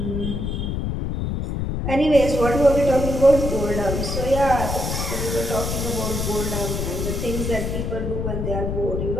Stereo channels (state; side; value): noise; left; rumble, 2 dB below the sound